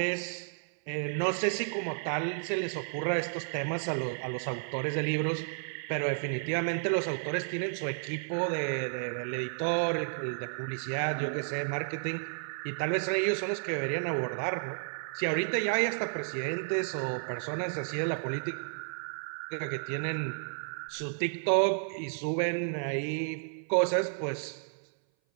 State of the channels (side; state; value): left; silent; 56 dB below the other